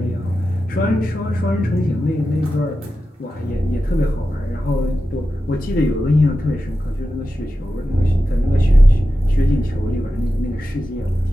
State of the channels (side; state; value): both; normal; correlation 0.92